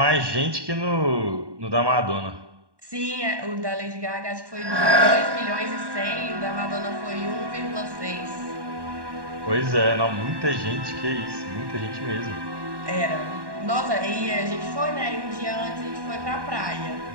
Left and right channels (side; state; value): left; late; 1.2 ms